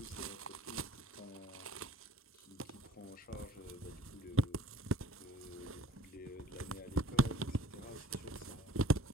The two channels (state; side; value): normal; both; correlation 0.53